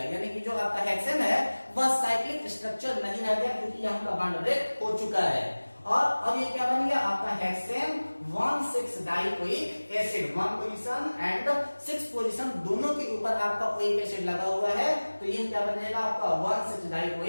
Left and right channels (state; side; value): inverted; both; correlation -1.00